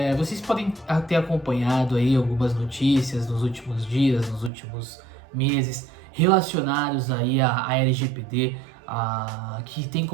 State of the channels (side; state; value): left; drops out; at 4.5 s